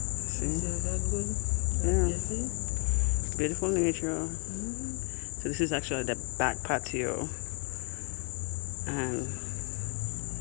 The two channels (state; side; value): quieter; right; 36.0 dB